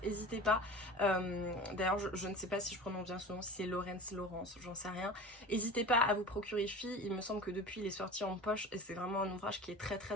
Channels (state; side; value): normal; both; correlation 0.35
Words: n'hésitez pas. D'ailleurs, je ne sais pas si je prononce bien son nom, si c'est Laurence, j'en sais rien. N'hésitez pas à vous procurer Filles, il me semble que depuis il est sorti en poche, et c'est vraiment un ouvrage qui est très